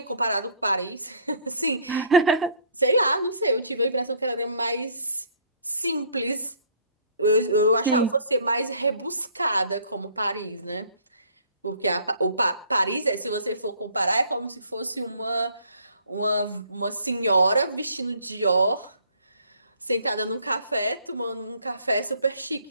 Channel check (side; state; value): both; inverted; correlation -0.58